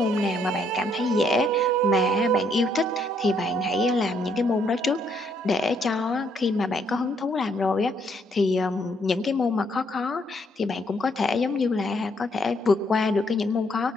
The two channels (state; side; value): normal; both; correlation 0.71